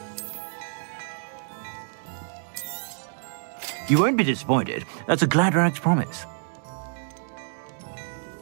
You won't be disappointed. That's a Gladrag's promise.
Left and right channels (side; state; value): left; silent; digital silence